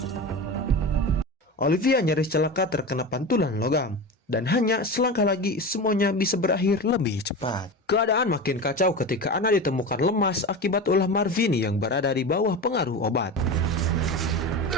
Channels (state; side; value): normal; both; correlation 0.26